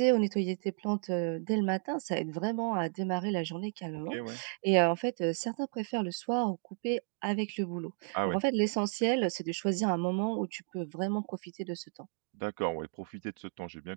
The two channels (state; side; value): silent; left; 56 dB below the other